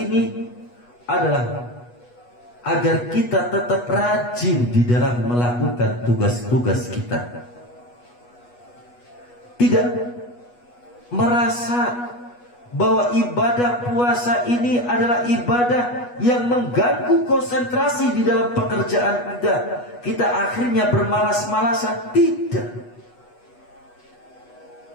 adalah agar kita tetap rajin di dalam melakukan tugas-tugas kita. Tidak merasa bahwa ibadah puasa ini adalah ibadah yang mengganggu konsentrasi di dalam pekerjaan kita. Kita akhirnya bermalas-malasan. Tidak.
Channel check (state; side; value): late; right; 8.2 ms